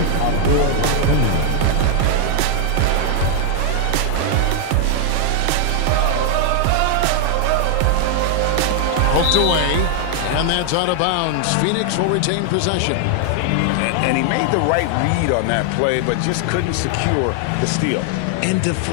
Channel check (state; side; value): different; both; correlation 0.00